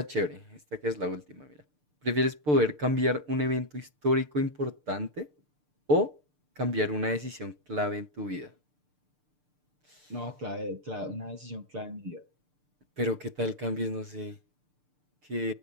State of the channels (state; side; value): late; left; 6.7 ms